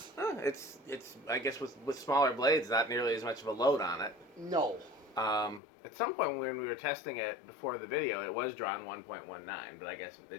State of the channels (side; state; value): right; drops out; at 5.6 s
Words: It's I guess with smaller blades, not nearly as much of a load on it. No. At some point when we were testing it before the video, it was drawn 1.19, but I guess